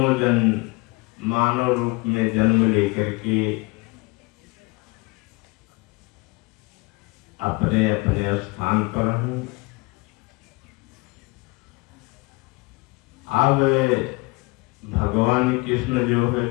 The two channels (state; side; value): quieter; right; 25.3 dB